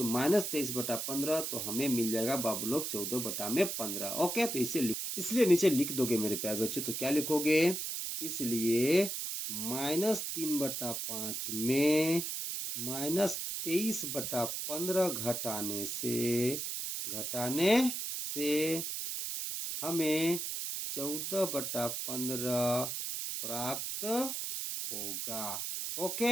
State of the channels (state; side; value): noise; right; hiss, 3 dB below the sound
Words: -23/15 तो हमें मिल जाएगा बाबू लोग 14/15। ओके, तो इसलिए नीचे लिख दोगे मेरे प्यारे बच्चों, तो क्या लिखोगे? इसलिए -3/5 में -23/15 घटाने से हमें 14/15 प्राप्त होगा।